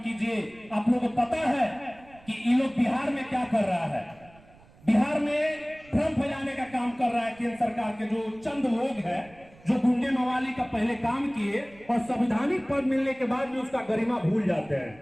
कीजिए। आप लोगों को पता है कि ये लोग बिहार में क्या कर रहा है, बिहार में भ्रम फैलाने का काम कर रहा है केंद्र सरकार के जो चंद लोग हैं, जो गुंडे मवाली का पहले काम किए और संवैधानिक पद मिलने के बाद भी उसका गरिमा भूल जाते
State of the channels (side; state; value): right; noise; rumble, 25 dB below the sound